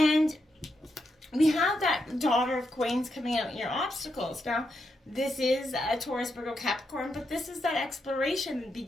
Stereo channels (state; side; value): normal; both; correlation 0.82